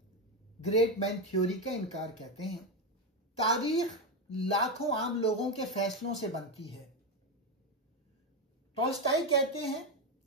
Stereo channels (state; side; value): normal; both; correlation 0.10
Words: ग्रेट मैन थ्योरी का इनकार कहते हैं। तारीख लाखों आम लोगों के फैसलों से बनती है। टॉल्स्टाई कहते हैं